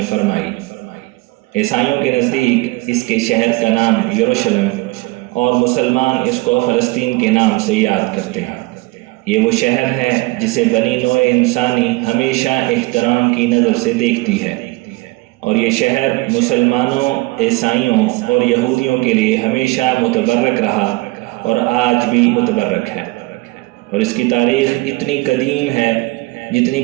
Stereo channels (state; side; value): quieter; left; 22.9 dB